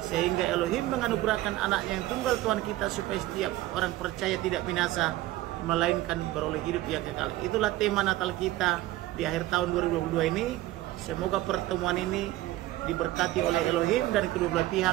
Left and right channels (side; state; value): left; quieter; 16.2 dB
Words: sehingga Elohim menganugerahkan anaknya yang tunggal Tuhan kita, supaya setiap orang percaya tidak binasa, melainkan beroleh hidup yang kekal. Itulah tema Natal kita di akhir tahun 2022 ini. Semoga pertemuan ini diberkati oleh Elohim dan kedua belah